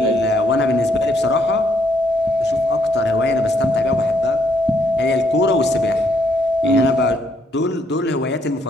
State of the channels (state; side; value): normal; both; correlation 0.71